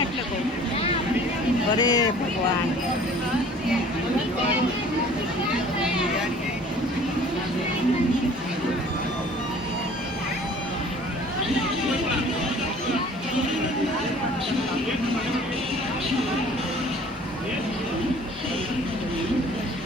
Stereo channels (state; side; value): normal; both; correlation 0.50